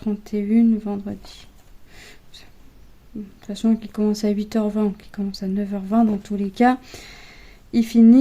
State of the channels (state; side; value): identical; both; correlation 1.00